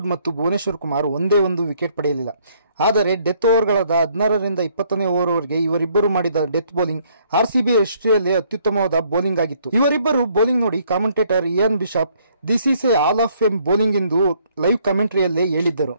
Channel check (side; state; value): both; inverted; correlation -0.66